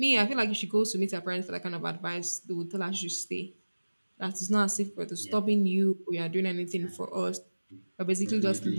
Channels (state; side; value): inverted; both; correlation -1.00